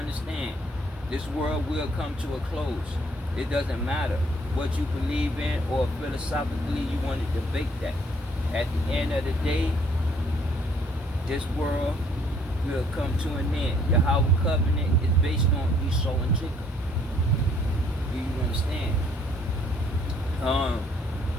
this world will come to a close. It doesn't matter what you believe in or philosophically you want to debate that. At the end of the day, this world will come to an end. YAHAWAH covenant is based on Esau and Jacob. Do you understand?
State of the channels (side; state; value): both; normal; correlation 0.63